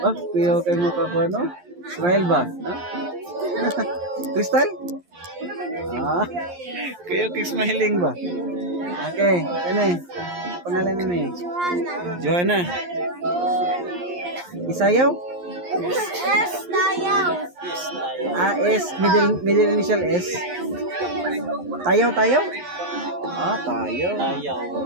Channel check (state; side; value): late; left; 11 ms